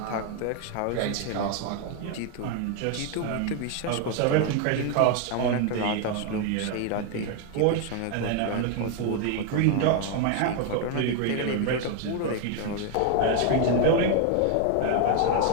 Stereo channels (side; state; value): both; different; correlation 0.01